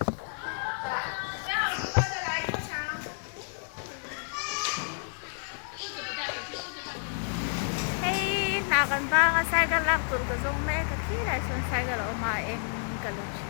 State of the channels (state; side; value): silent; right; 57 dB below the other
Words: Hey, nakan ba nga cycle lang tur ka zong me ka kila son cycle o ma em ka lo